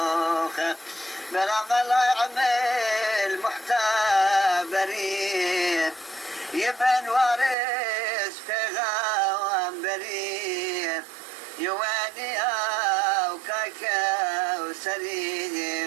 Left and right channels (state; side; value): drops out; left; at 7.6 s